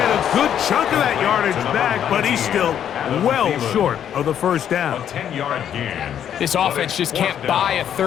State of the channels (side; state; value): right; quieter; 9.5 dB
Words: a good chunk of that yardage back, but he's still well short of the first down. A 10-yard gain. This offense just can't buy a